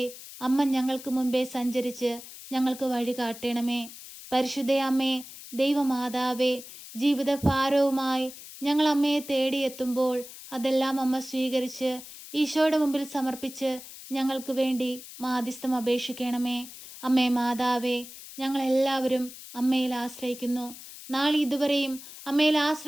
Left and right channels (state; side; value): noise; left; hiss, 15 dB below the sound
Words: അമ്മ ഞങ്ങൾക്ക് മുൻപേ സഞ്ചരിച്ച് ഞങ്ങൾക്ക് വഴി കാട്ടണമേ. പരിശുദ്ധ അമ്മേ, ദൈവമാതാവേ, ജീവിതഭാരവുമായി ഞങ്ങൾ അമ്മയെ തേടിയെത്തുമ്പോൾ അതെല്ലാം അമ്മ സ്വീകരിച്ച് ഈശോയുടെ മുമ്പിൽ സമർപ്പിച്ച് ഞങ്ങൾക്ക് വേണ്ടി മാധ്യസ്ഥം അപേക്ഷിക്കണമേ. അമ്മേ മാതാവേ, ഞങ്ങളെല്ലാവരും അമ്മയിൽ ആശ്രയിക്കുന്നു. നാളെ ഇതുവരെയും അമ്മയിൽ